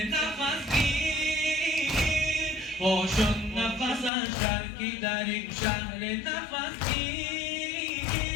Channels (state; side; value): drops out; right; at 4.1 s